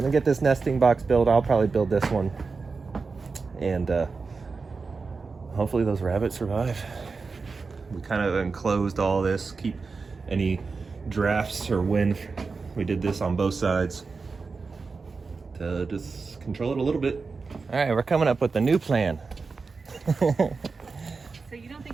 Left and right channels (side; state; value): left; quieter; 4.5 dB